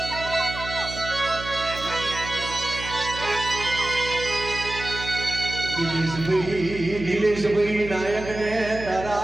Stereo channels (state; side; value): noise; right; hum, 10 dB below the sound